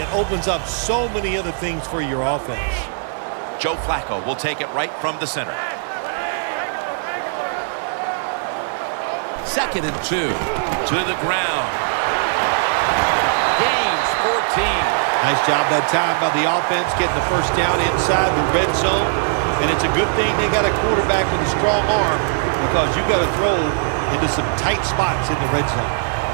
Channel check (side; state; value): left; silent; 66 dB below the other